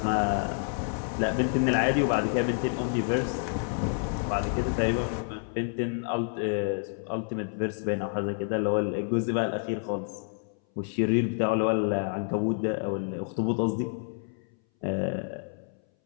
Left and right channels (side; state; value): right; silent; 59 dB below the other